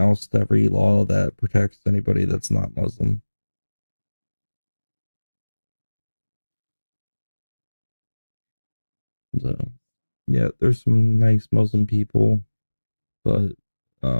every law that protects anybody that's not Muslim. So, yeah, there's some nice Muslim people, but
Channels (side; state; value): both; inverted; correlation -1.00